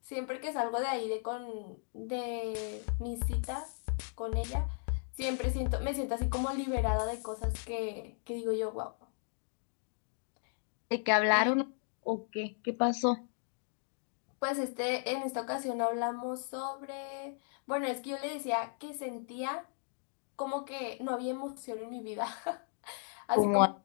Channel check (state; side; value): silent; right; 54 dB below the other